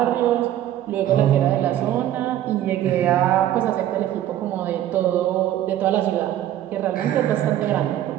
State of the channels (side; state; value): left; quieter; 12.2 dB